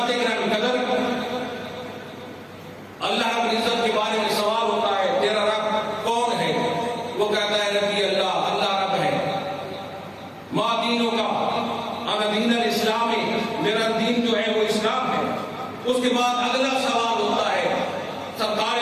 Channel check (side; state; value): both; identical; correlation 1.00